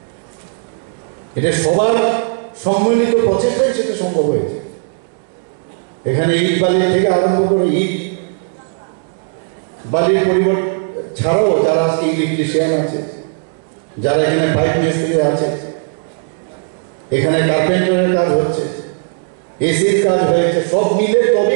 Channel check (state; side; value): silent; left; digital silence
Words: এটা সবার সম্মিলিত প্রচেষ্টায় সেটা সম্ভব হয়েছে এখানে ইট বালির থেকে আরম্ভ করে ইট বালির পরিবর্তন ছাড়াও যারা আজকে ইলেকট্রিশিয়ান আছে যারা এখানে পাইপ মিস্ত্রি আছে এখানে কার্পেন্টারের কাজ হচ্ছে এসির কাজ হয়েছে সব মিলে